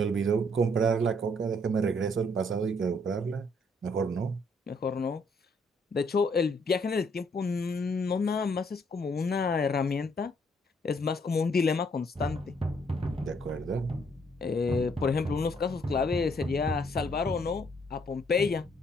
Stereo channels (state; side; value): normal; both; correlation 0.68